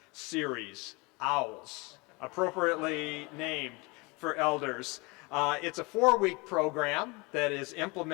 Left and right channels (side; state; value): right; quieter; 26.8 dB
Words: Series, OWLS, appropriately named for elders. It's a 4-week program that is